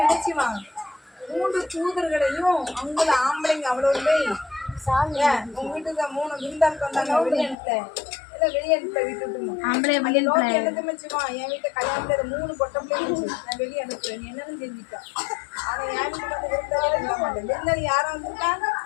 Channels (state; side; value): drops out; right; at 7.6 s